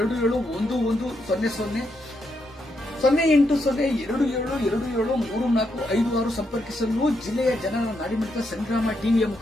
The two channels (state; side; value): normal; both; correlation 0.80